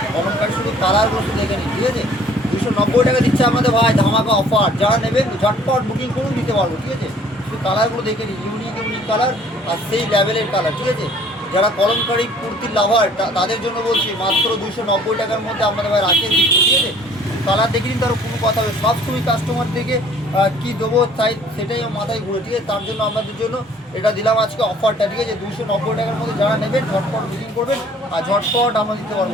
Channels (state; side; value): normal; both; correlation 0.55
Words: কলমকারি শুধু কালারগুলো শুধু দেখে নিন, ঠিক আছে? 290 টাকা দিচ্ছে আমাদের ভাই, ধামাকা অফার। যারা নেবেন ঝটপট বুকিং করুন, দিতে পারবো, ঠিক আছে? শুধু কালারগুলো দেখে নিন, ইউনিক ইউনিক কালার আর সেই লেভেলের কালার, ঠিক আছে? যারা কলমকারি কুর্তির লাভার তাদের জন্য বলছি মাত্র 290 টাকার মধ্যে আমাদের ভাই রাখেন দিচ্ছে, ঠিক আছে? কালার দেখে নিন, তার কোনো কথা হবে। সবসময় কাস্টমার থেকে কী দেবো চাই সেটাই আমার মাথায় ঘুরে, ঠিক আছে? তার জন্য আমাদের জন্য এটা দিলাম আজকে অফারটা, ঠিক আছে? 290 টাকার মধ্যে যারা নেবেন ঝটপট বুকিং করবেন আর ঝটপট আমরা দিতে